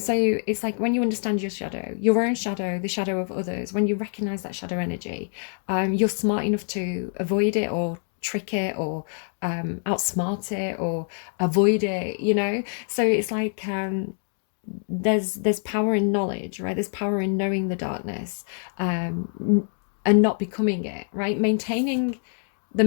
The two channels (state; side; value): silent; right; 57 dB below the other